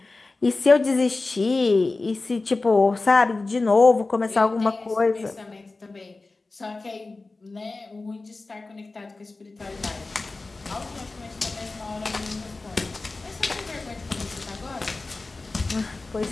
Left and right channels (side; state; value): right; quieter; 3.5 dB